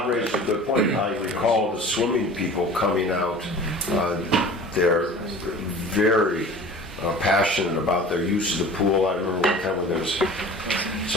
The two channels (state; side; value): normal; both; correlation 0.41